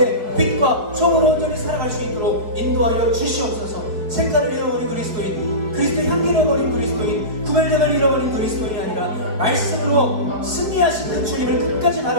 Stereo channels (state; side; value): late; left; 4.7 ms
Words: 빛과 소금으로 온전히 살아갈 수 있도록 인도하여 주시옵소서. 색깔을 잃어버린 그리스도인, 그리스도의 향기를 잃어버린 그리스도인, 구별됨을 잃어버린 그리스도인이 아니라 말씀으로 승리하신 그 주님을 끝까지